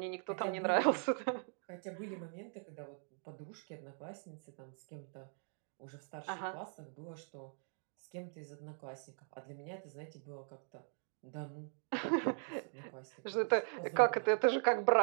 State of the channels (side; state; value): left; silent; 51 dB below the other